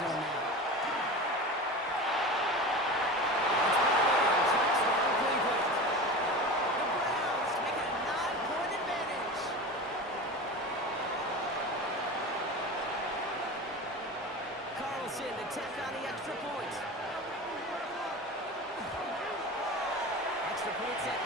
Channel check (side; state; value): both; normal; correlation 0.30